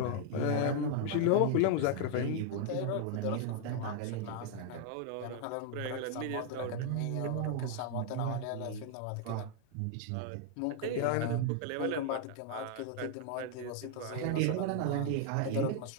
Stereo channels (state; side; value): different; both; correlation 0.00